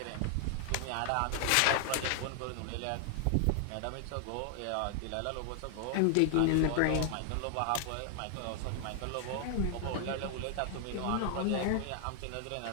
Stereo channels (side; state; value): both; different; correlation 0.00